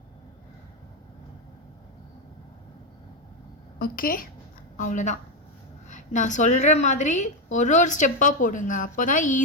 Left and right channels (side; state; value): both; normal; correlation 0.07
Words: ஓகே, அவ்வளோதான். நான் சொல்கிற மாதிரி ஒரு ஒரு ஸ்டெப்பாக போடுங்க, அப்போ தான்